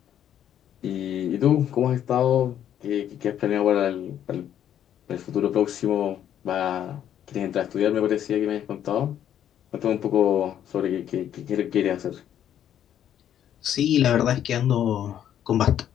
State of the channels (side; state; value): right; quieter; 10.3 dB